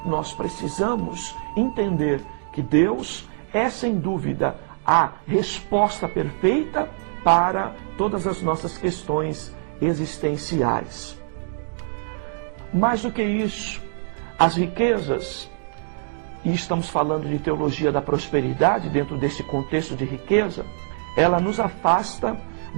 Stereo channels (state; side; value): silent; left; digital silence